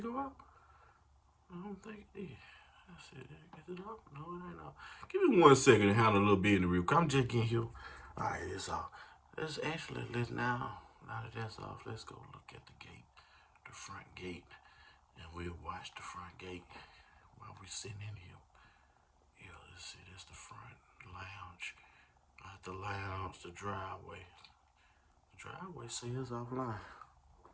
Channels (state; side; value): identical; both; correlation 1.00